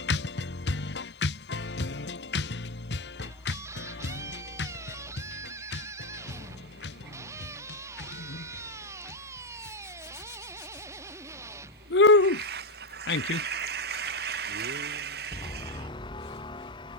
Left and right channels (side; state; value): both; normal; correlation 0.07